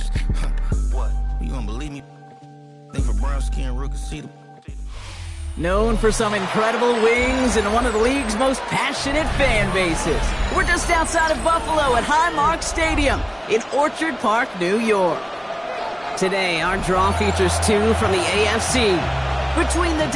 What? You don't believe me? Think for brown skin, Rook can see them. Known for some incredible wings and one of the league's most passionate fan bases. We're just outside of Buffalo at Highmark Stadium in Orchard Park, New York. Today, our draw features two from the AFC between the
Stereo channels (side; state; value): both; identical; correlation 1.00